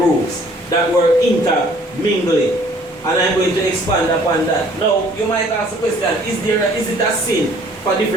that were intermingling. And I'm going to expand upon that. Now, you might ask the question, is it a sin for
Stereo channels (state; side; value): normal; both; correlation 0.57